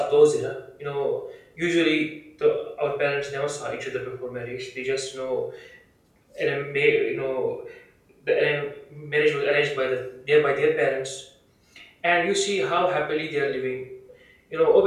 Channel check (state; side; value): identical; both; correlation 1.00